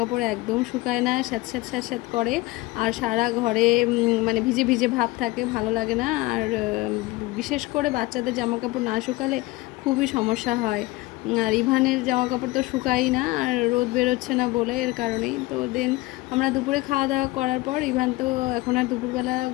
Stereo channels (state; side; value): quieter; right; 20.4 dB